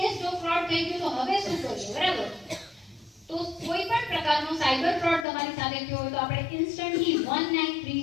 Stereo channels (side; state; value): right; drops out; at 5.2 s